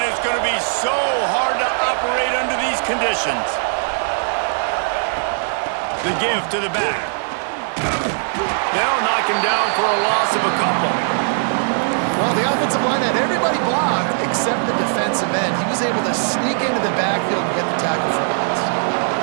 it's going to be so hard to operate under these conditions. The give to the back. They'll knock him down for a loss of a couple. Well, the offensive line had everybody blocked except the defensive end. He was able to sneak into the backfield and get the tackle for loss.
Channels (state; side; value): silent; left; 66 dB below the other